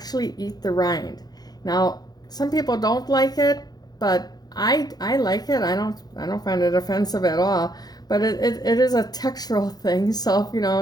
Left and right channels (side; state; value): right; late; 0.19 ms